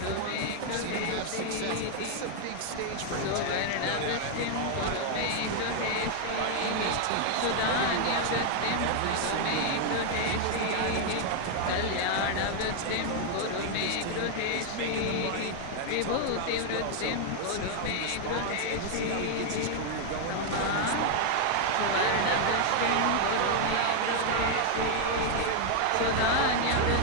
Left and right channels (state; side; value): different; both; correlation 0.00